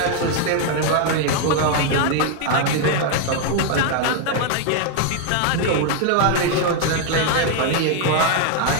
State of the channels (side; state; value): both; different; correlation 0.00